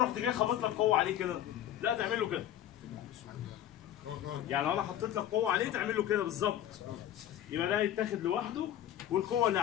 جاي خابط لك قوه عليه كده، لا تعمل له كده. يعني لو انا حطيت لك قوه عليه تعمل له كده بالظبط. يبقى ده يتاخد لوحده، والقوه اللي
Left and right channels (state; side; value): quieter; right; 11.6 dB